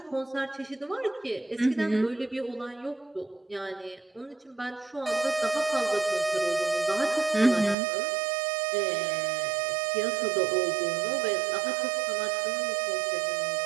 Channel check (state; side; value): drops out; left; at 7.8 s